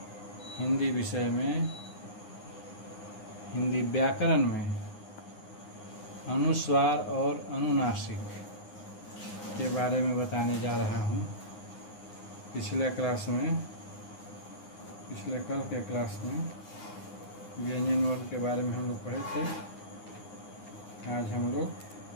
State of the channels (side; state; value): right; late; 9.7 ms